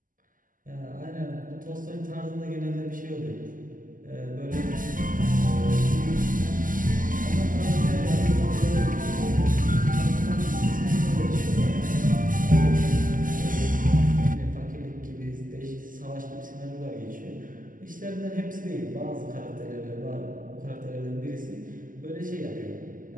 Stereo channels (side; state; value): left; late; 0.39 ms